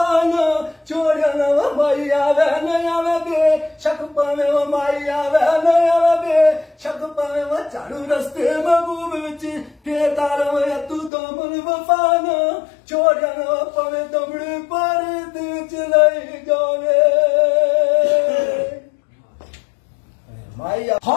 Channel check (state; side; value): drops out; right; at 11.1 s